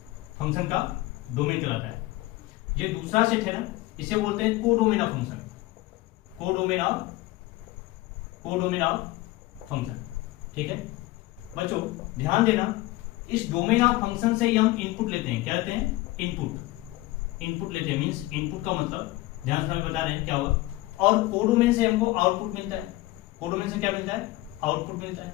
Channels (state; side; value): quieter; right; 18.9 dB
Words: function का डोमेन कहलाता है। ये दूसरा सेट है ना, इसे बोलते हैं codomain of function, codomain of function. ठीक है बच्चों, ध्यान देना, इस डोमेन ऑफ फंक्शन से ही हम इनपुट लेते हैं। क्या लेते हैं? इनपुट लेते हैं, मींस इनपुट का मतलब ध्यान से बता रहे हैं क्या होगा। और कोडोमेन से हमको आउटपुट मिलता है। कोडोमेन से क्या मिलता है? आउटपुट मिलता है।